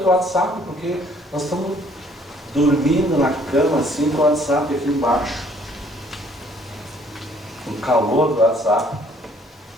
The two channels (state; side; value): normal; both; correlation 0.61